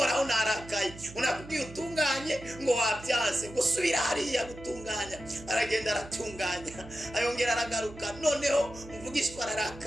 narakaye, unakubwiye utunganye ngo wabyanze, ngo subira hariya gutunganya. Aragenda aratunganya, ayongera aragaruka. Noneho umuvugishwa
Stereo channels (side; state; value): right; noise; hum, 16 dB below the sound